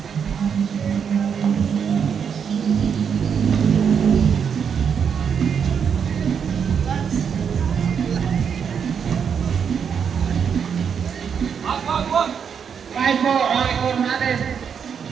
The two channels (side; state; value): left; quieter; 7.1 dB